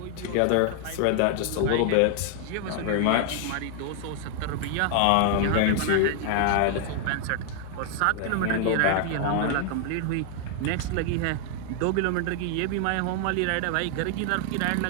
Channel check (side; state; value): both; different; correlation 0.00